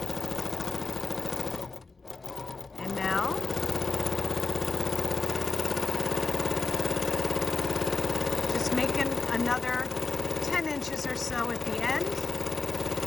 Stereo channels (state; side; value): quieter; right; 4.0 dB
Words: And now, just making another 10 inches or so at the end.